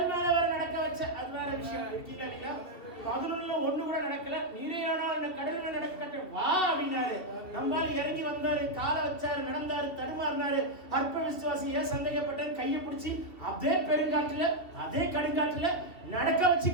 மேல வர நடக்க வச்ச, அது வேற விஷயம். இருக்கீங்களா இல்லையா? 11ல 1 கூட நடக்கல, நீரே ஆனால் கடல் மேல நடக்க கட்ட வா அப்படின்னாரு. நம்மால இறங்கி வந்தாரு, காலை வச்சாரு, நடந்தாரு, தடுமாறினாரு. அற்ப விசுவாசி ஏன் சந்தேகப்பட்டேன், கையை பிடிச்சி அதே பெருங்காட்டுல அதே கடுங்காட்டுல நடக்க வச்சு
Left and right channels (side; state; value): right; late; 2.7 ms